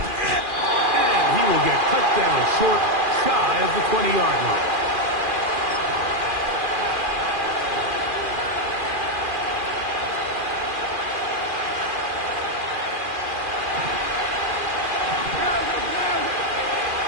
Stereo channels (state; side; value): late; left; 2.4 ms